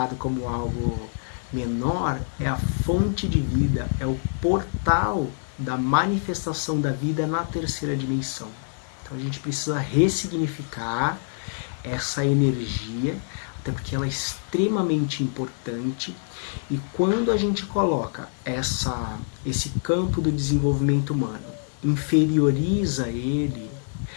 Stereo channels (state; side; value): silent; right; digital silence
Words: como algo menor é a fonte de vida, é o portal da manifestação da vida na terceira dimensão. Então a gente precisa ressignificar essa energia, até porque ela é extremamente importante. E quando a gente coloca esse campo do desenvolvimento humano, inferioriza ele,